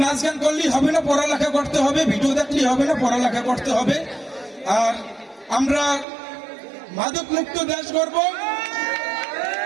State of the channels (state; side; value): drops out; left; at 6.1 s